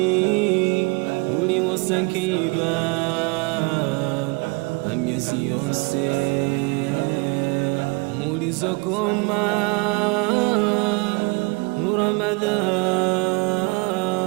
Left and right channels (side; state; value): left; quieter; 28.5 dB